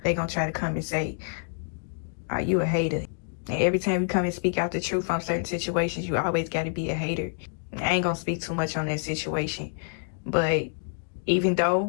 They gonna try to come and say, are you a hater? And every time you come and speak out the truth on certain situations, you always gotta be a hater. I ain't gonna speak too much on that situation, but even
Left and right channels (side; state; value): right; silent; digital silence